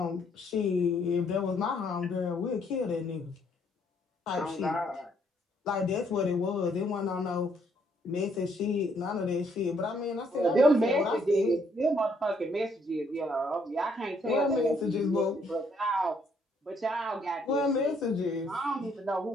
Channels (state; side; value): normal; both; correlation 0.69